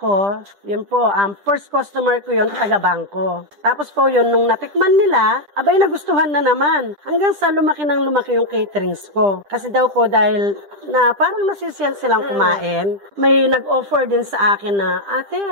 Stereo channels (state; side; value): late; left; 10 ms